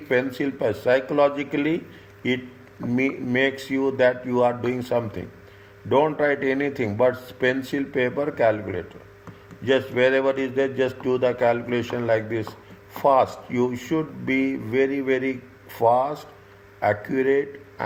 pencil. Psychologically, it makes you that you are doing something. Don't write anything but pencil, paper, calculator. Just wherever is there, just do the calculation like this. Fast. You should be very, very fast, accurate,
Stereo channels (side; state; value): both; identical; correlation 1.00